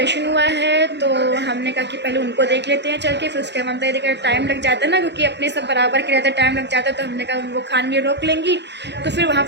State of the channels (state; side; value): late; left; 0.50 ms